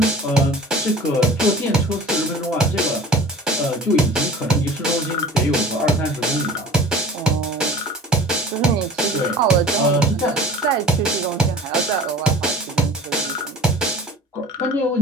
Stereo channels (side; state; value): both; normal; correlation 0.43